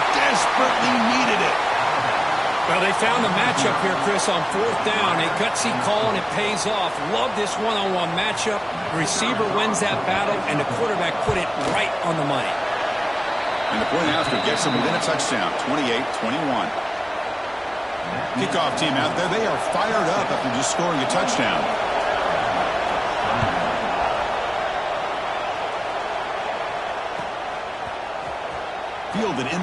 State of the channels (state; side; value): identical; both; correlation 1.00